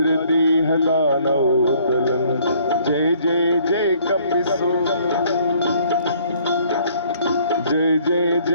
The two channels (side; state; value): both; inverted; correlation -0.60